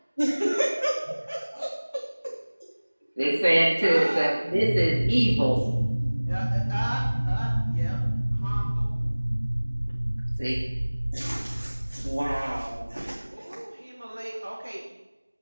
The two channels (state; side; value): inverted; both; correlation -1.00